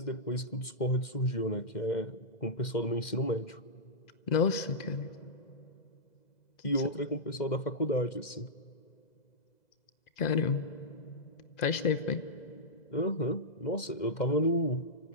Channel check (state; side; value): late; right; 2.0 ms